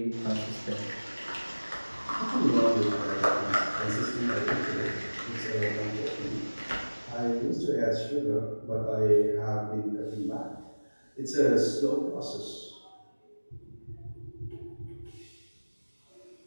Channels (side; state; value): both; inverted; correlation -1.00